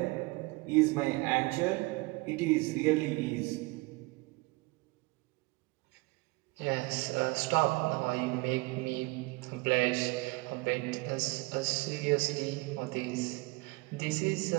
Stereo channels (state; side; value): quieter; left; 24.4 dB